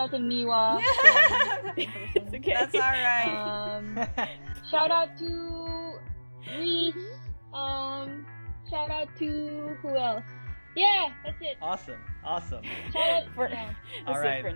to Miwa. It's okay. That's alright. Shout out to Reese. Shout out to who else? Yeah, that's it. Awesome. Shout out, For, yeah. that's All it right. for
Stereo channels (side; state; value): both; inverted; correlation -1.00